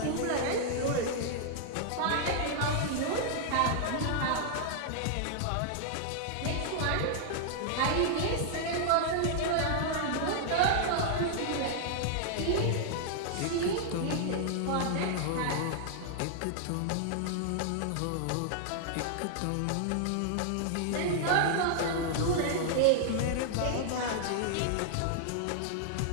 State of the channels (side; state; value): both; different; correlation -0.01